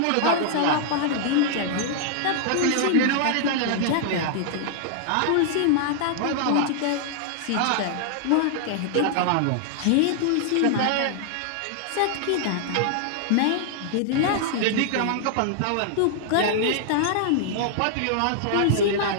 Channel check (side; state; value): both; different; correlation -0.01